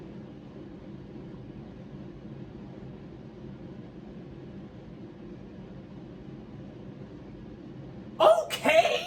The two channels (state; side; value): identical; both; correlation 1.00